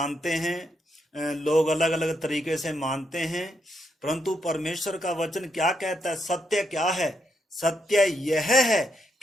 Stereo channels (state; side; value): normal; both; correlation 0.79